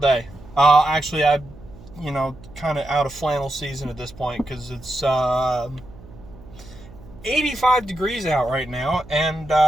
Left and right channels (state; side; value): noise; right; hum, 20 dB below the sound